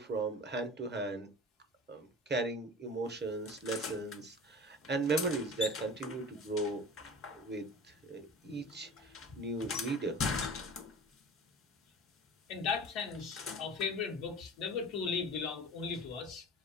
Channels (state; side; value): normal; both; correlation 0.38